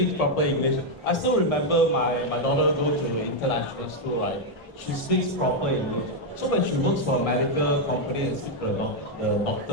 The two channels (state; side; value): normal; both; correlation 0.01